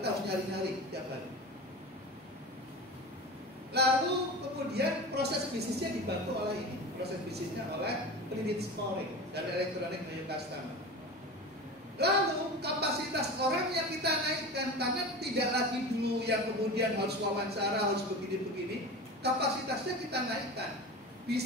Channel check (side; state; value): both; normal; correlation 0.31